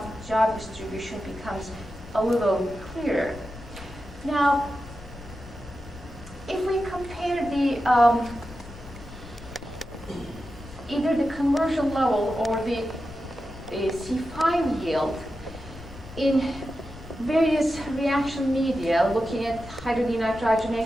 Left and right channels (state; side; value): noise; left; rumble, 16 dB below the sound